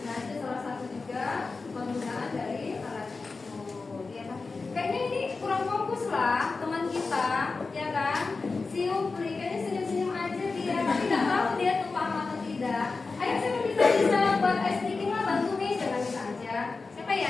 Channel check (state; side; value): quieter; right; 4.1 dB